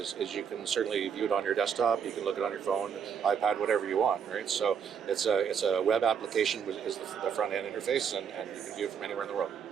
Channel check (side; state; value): left; quieter; 7.2 dB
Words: you can certainly view it on your desktop. You can look it on your phone, iPad, whatever you want, right? So it's a web application which is the front end interface, and you can view it from anywhere in the world.